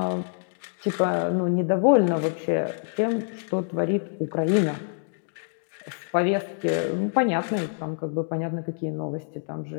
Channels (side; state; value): right; silent; digital silence